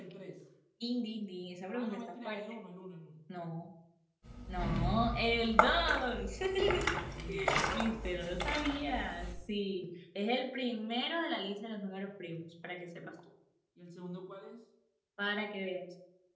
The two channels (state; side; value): identical; both; correlation 1.00